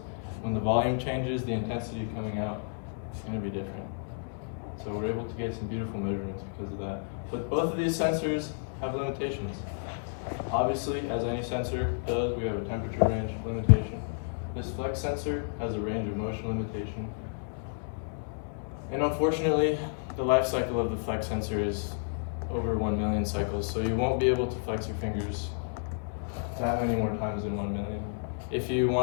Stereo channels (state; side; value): silent; right; 57 dB below the other